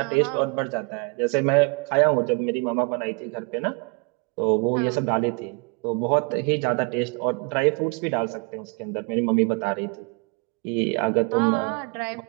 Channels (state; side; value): quieter; left; 32.2 dB